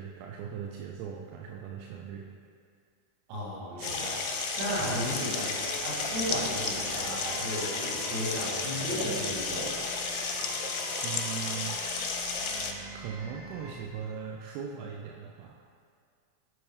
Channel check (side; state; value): left; late; 31 ms